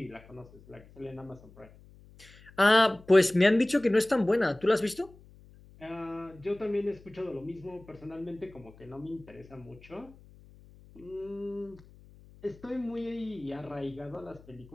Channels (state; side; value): noise; left; hum, 23 dB below the sound